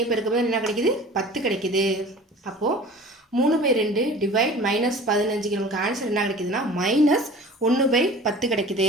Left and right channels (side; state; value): both; normal; correlation 0.43